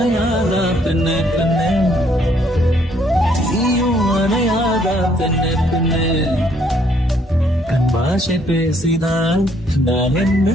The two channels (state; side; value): normal; both; correlation 0.67